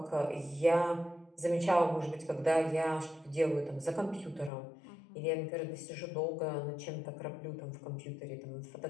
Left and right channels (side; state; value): right; drops out; at 4.5 s